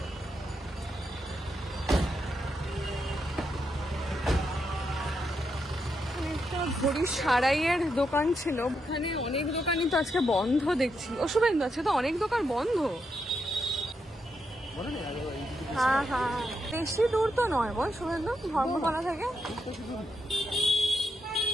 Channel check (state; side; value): normal; both; correlation 0.82